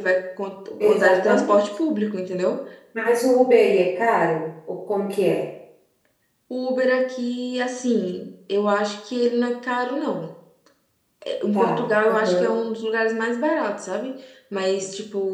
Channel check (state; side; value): identical; both; correlation 1.00